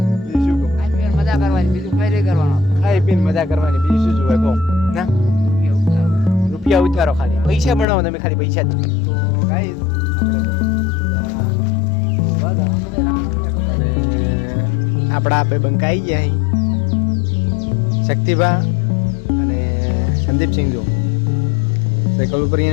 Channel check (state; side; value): drops out; right; at 7.9 s